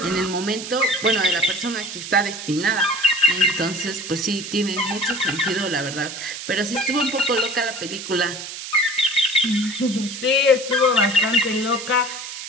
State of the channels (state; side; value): noise; right; hiss, 9 dB below the sound